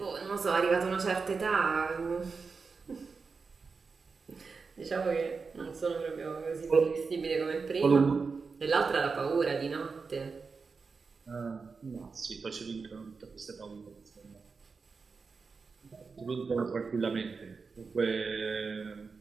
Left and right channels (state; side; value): quieter; left; 4.8 dB